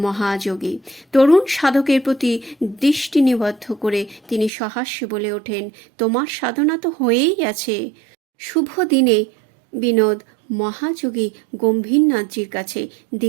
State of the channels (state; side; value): drops out; left; at 4.5 s